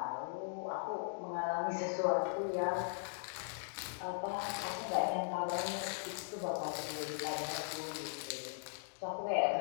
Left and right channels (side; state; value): right; silent; digital silence